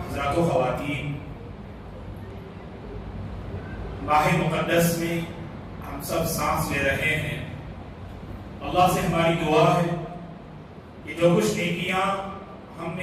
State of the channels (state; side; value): identical; both; correlation 1.00